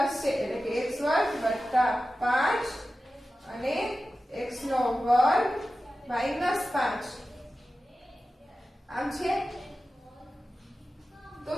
છે એટલે કે x વર્ગ વત્તા 5 અને x નો વર્ગ -5. આમ છે. તો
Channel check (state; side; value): normal; both; correlation 0.94